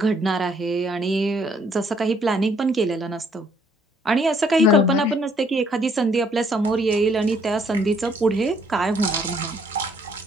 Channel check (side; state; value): both; normal; correlation 0.65